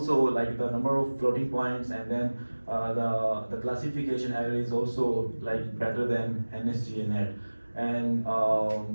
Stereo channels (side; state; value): both; inverted; correlation -1.00